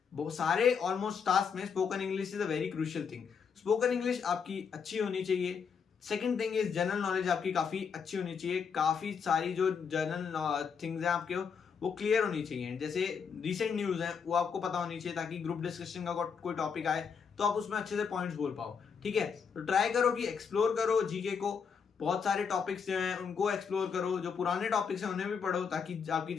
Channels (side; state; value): right; quieter; 6.3 dB